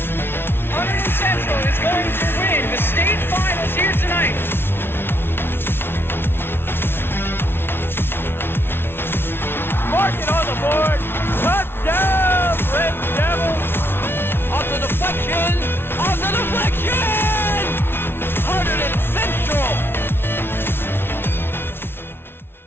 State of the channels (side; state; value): right; late; 0.11 ms